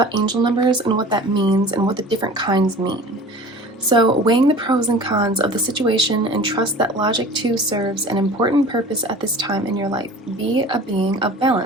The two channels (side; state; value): both; normal; correlation 0.41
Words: angel numbers and what that means and what the different kinds mean. So weighing the pros and cons of the situation, and trust that logic too serves an important purpose at this time in your life. Be a being of